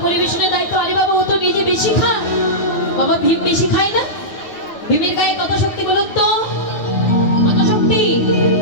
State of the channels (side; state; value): right; late; 9.3 ms